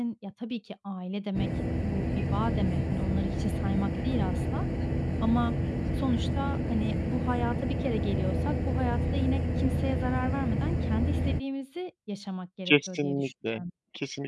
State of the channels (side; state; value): both; identical; correlation 1.00